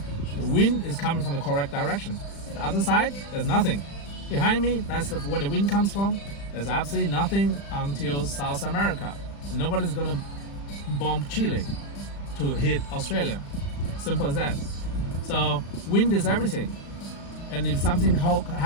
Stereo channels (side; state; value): right; late; 35 ms